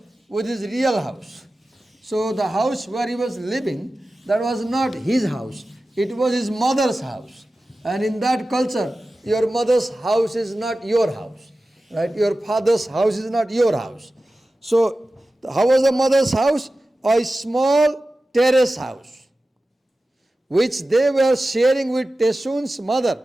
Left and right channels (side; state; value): both; normal; correlation 0.95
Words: with his real house. So the house where he was living, that was not his house. It was his mother's house. And in that culture, your mother's house is not your house. Right? Your father's house is not your house. So how was the mother's house? A small terrace house, which they were sharing with Tesun's mother,